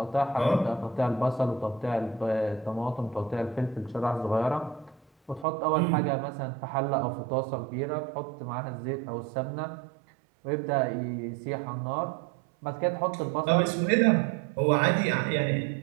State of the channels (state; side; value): drops out; left; at 5.5 s